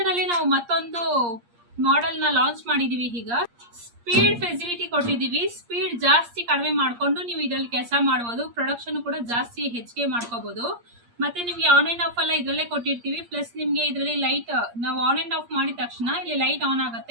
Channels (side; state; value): left; late; 8.5 ms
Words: ಅಲ್ಲಿ ನಾವು ಮತ್ತೊಂದು ಮಾಡೆಲ್ ನ ಲಾಂಚ್ ಮಾಡಿದೀವಿ. ಈಗ ಸ್ಪೀಡ್ ಫೆಸಿಲಿಟಿ ಕೊಟ್ಟಿದ್ದೀವಿ. ಸ್ಪೀಡ್ ಜಾಸ್ತಿ ಕಡಿಮೆ ಮಾಡ್ಕೊಂಡು ನೀವು ಇದರಲ್ಲಿ ಕೆಲಸ ಮಾಡ್ಬೋದು. ಪ್ರೊಡಕ್ಷನ್ ಕೂಡ ಜಾಸ್ತಿ ಹೆಚ್ಚಿಗೆ ಮಾಡ್ಕೋಬಹುದು. ಮತ್ತೆ ನಿಮ್ಗೆ ಆನ್ ಅಂಡ್ ಆಫ್ ಎಲ್ಲ ಇದರಲ್ಲೇ ಕೊಟ್ಟಿರ್ತೀವಿ. ಪ್ಲಸ್ ನಿಮ್ಗೆ ಇದರಲ್ಲಿ ಲೈಟ್ ನಾವು ಆನ್ ಅಂಡ್ ಆಫ್ ಮಾಡಿದ ತಕ್ಷಣ ಇಲ್ಲಿ ಲೈಟ್ ಆನ್